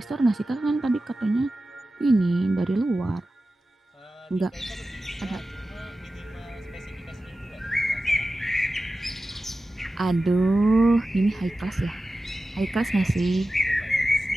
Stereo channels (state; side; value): normal; both; correlation 0.94